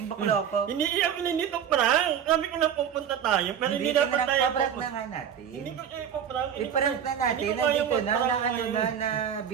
bakla pa. Hindi iyak na nito prank. Sabi ko na pupunta tayo, pero hindi dapat tayo Prank na pupunta. nga natin. Hindi ko ipaprank. I-prank na natin, nandito na, wala ka naman na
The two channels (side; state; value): left; quieter; 8.6 dB